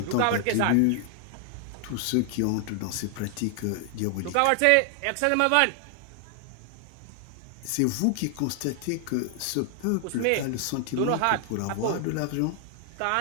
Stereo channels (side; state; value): both; different; correlation 0.00